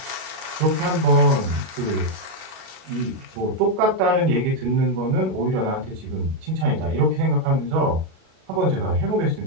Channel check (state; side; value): late; left; 37 ms